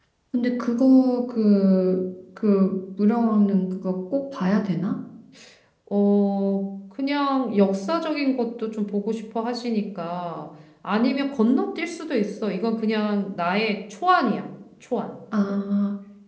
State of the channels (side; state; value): both; identical; correlation 1.00